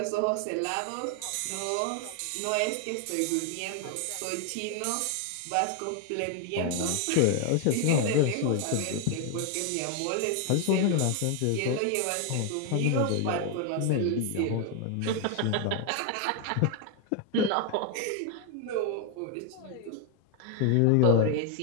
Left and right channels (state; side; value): different; both; correlation 0.00